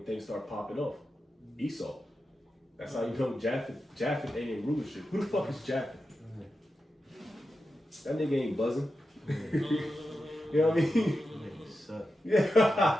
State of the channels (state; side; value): normal; both; correlation 0.90